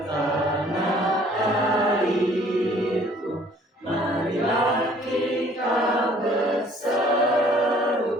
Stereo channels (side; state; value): both; normal; correlation 0.57